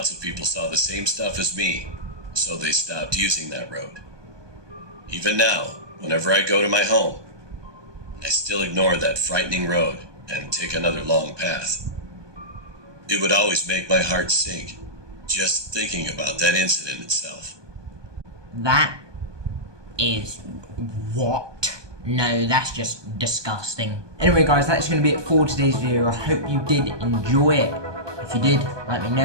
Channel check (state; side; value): late; left; 1.2 ms